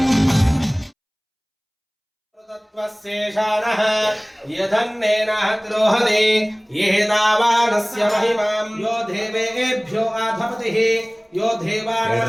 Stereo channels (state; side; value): identical; both; correlation 1.00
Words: तत्त्वस्येषानः यदन्नेनः द्रोहते येदावानस्य महिमां यो देवेभ्यो आधपतिः यो